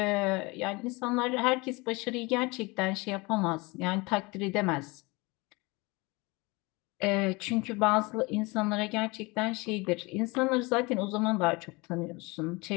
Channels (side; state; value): right; quieter; 25.4 dB